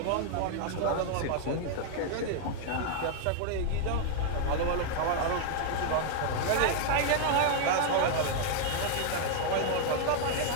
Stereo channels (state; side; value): different; both; correlation 0.00